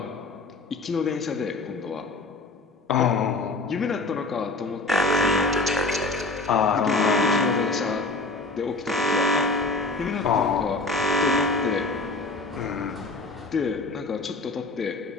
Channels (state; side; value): quieter; right; 3.2 dB